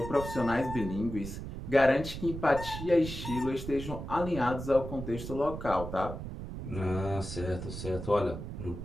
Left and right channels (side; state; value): right; noise; rumble, 8 dB below the sound